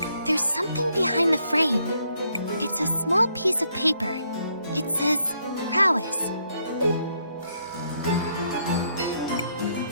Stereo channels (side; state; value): both; inverted; correlation -0.73